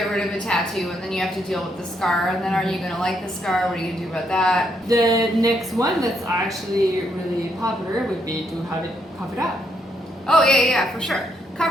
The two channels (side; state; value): both; normal; correlation 0.75